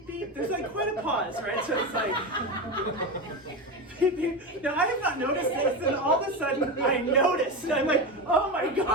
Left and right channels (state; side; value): normal; both; correlation 0.19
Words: beep. There's like quite a pause, right? So it's like, beep, beep. Now, I have not noticed this, and all of a sudden I noticed, and I'm like, oh my